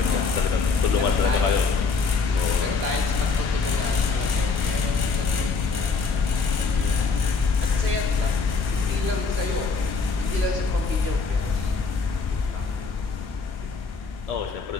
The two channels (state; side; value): quieter; right; 4.6 dB